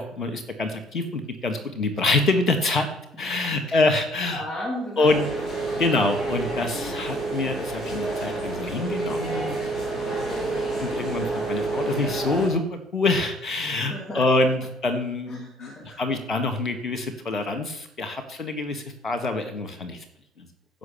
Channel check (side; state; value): both; normal; correlation 0.59